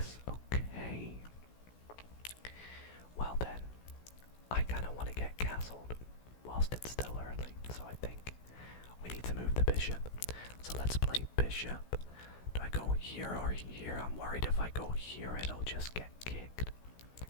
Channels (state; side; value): late; right; 16 ms